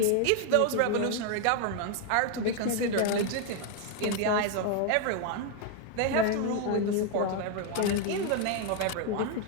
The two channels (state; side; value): different; both; correlation 0.01